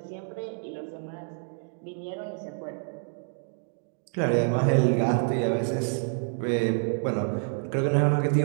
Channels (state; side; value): silent; left; 59 dB below the other